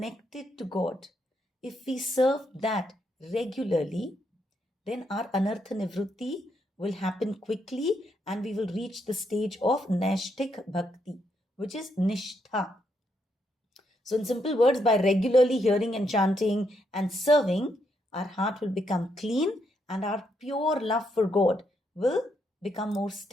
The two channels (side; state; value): both; normal; correlation 0.77